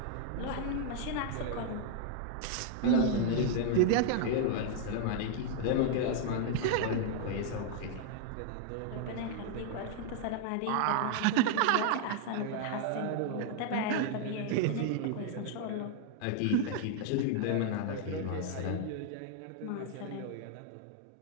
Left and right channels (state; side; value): different; both; correlation 0.00